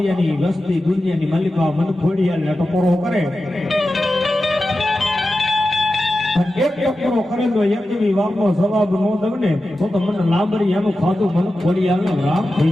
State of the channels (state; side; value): normal; both; correlation 0.92